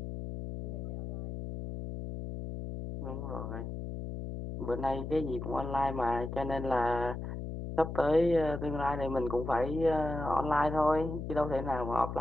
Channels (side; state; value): left; noise; hum, 6 dB below the sound